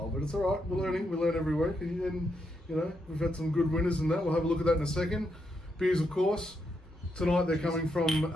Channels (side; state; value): both; normal; correlation 0.81